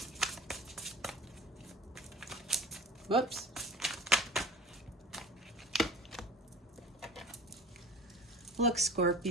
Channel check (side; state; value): both; normal; correlation 0.38